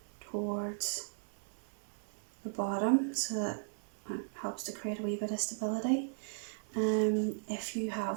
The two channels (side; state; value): left; silent; 53 dB below the other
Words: towards the bottom, so that it helps to create a wee bit of stability. If you